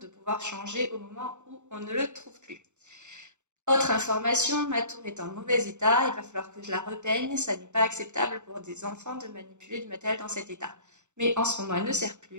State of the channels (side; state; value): left; late; 0.84 ms